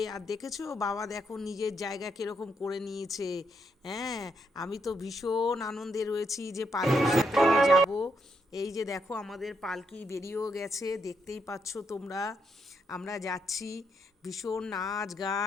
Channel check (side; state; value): both; normal; correlation 0.78